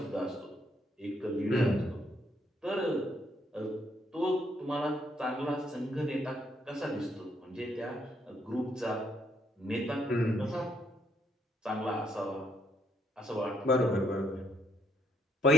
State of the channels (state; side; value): normal; both; correlation 0.72